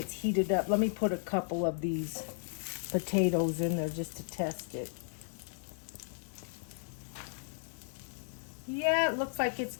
heated up. Let me put a couple of these potatoes in there just to test it. Yeah, it looks like it's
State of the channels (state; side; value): silent; right; 55 dB below the other